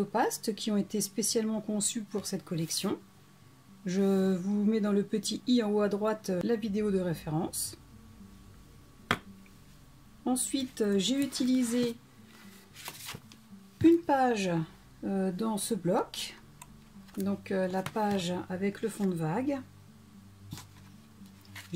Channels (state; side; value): identical; both; correlation 1.00